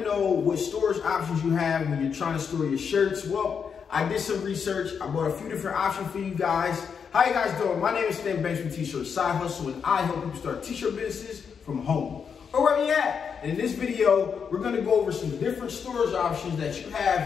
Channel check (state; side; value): quieter; right; 6.6 dB